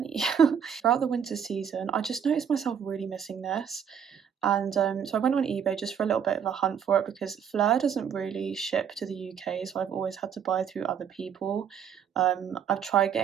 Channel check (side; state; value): left; quieter; 7.8 dB